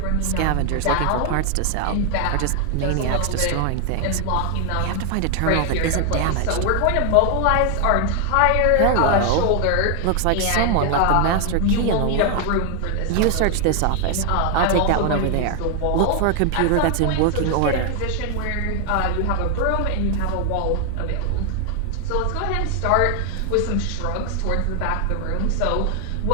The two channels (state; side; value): different; both; correlation 0.00